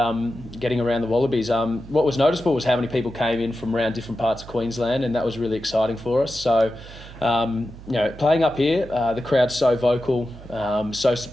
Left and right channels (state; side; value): noise; right; hum, 16 dB below the sound